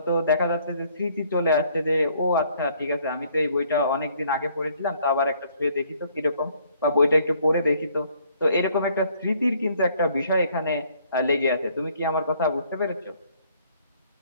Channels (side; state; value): both; inverted; correlation -0.63